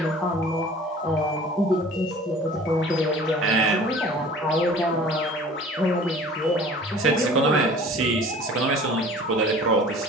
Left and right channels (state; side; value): normal; both; correlation 0.46